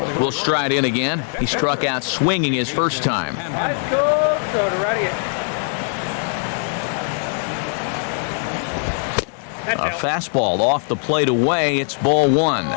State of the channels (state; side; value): silent; right; 55 dB below the other